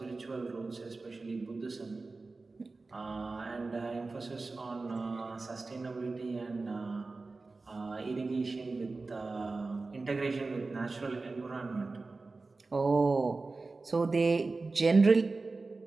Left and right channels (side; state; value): left; quieter; 3.7 dB